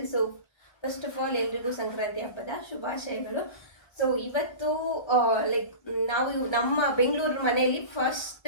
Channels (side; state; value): right; late; 1.3 ms